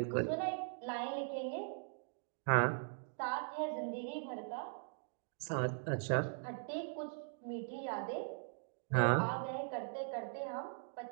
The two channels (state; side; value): silent; left; digital silence